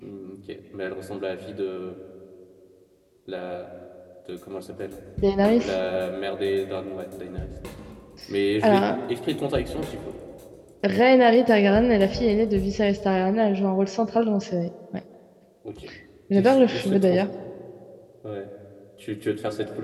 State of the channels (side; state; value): both; identical; correlation 1.00